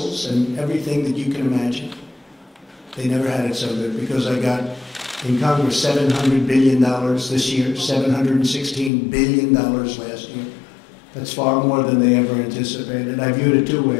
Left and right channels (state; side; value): drops out; right; at 8.9 s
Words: and everything that you can imagine. They never had it so good, because I got in Congress $700 billion this year, $716 billion last year. That's far more than they ever anticipated. I viewed it two